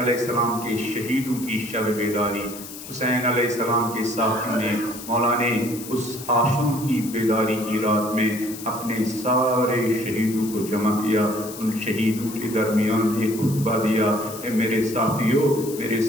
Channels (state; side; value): noise; left; hiss, 13 dB below the sound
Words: السلام کے شہیدوں کی شب بیداری، حسین علیہ السلام کے ساتھیوں نے، مولا نے اس عاشور کی بیداری کی رات میں اپنے سارے شہیدوں کو جمع کیا، ان شہیدوں کے درمیان ایک خطبہ دیا، اے میرے ساتھیوں، میرے